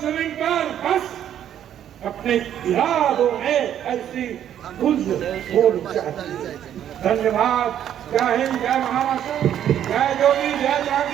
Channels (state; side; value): quieter; left; 10.3 dB